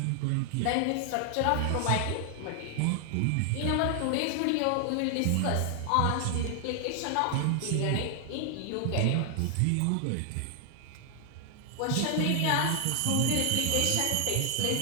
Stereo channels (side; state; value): both; different; correlation 0.00